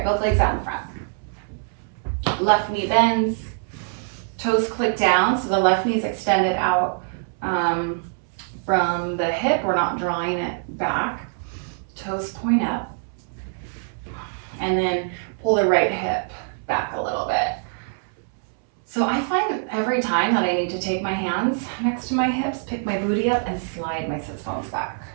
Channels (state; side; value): silent; left; 63 dB below the other